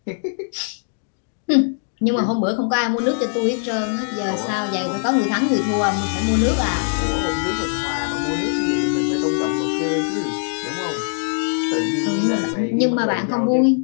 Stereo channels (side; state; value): right; silent; digital silence